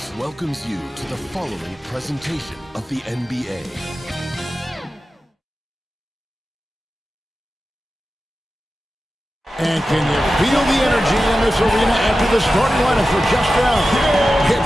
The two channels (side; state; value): both; normal; correlation 0.93